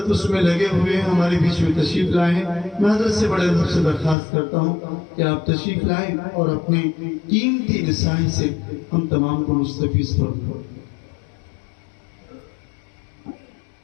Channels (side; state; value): right; drops out; at 4.2 s